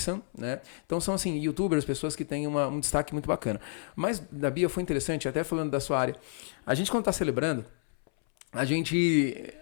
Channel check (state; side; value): silent; right; 58 dB below the other